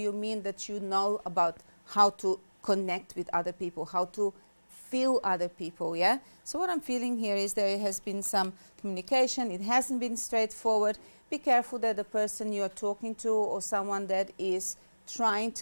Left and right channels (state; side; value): inverted; both; correlation -1.00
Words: mean that you know about how to connect with other people, how to feel other people, yeah? So what I'm feeling here is there has been some communication. It hasn't been straightforward. Be careful that the person you're talking to or someone that is trying